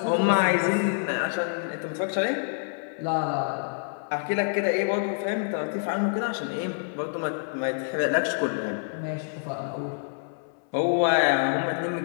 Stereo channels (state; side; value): silent; right; 60 dB below the other